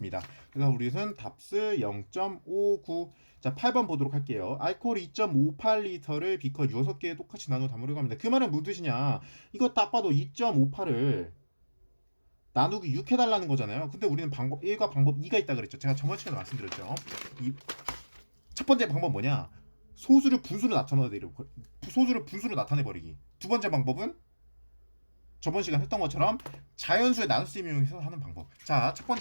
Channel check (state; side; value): inverted; both; correlation -1.00